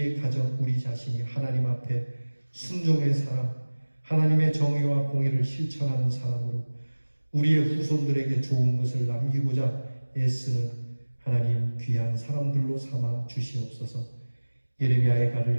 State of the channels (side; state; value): both; inverted; correlation -1.00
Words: 가정, 우리 자신이 하나님 앞에 순종의 사람, 하나님의 정의와 공의를 실천하는 사람으로 우리의 후손들에게 좋은 것을 남기고자 애쓰는 하나님 귀한 사람들로 삼아 주시옵소서. 예레미야의 가를